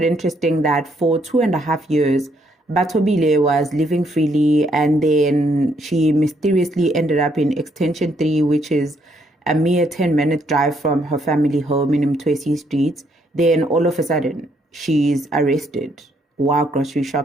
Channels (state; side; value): normal; both; correlation 0.72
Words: interesting that for 2.5 years, Bathobile was living freely, and then she mysteriously ended up in Extension 3, which is a mere 10-minute drive from her family home in Mtwesi Street. Then all of a sudden, she's arrested while grocery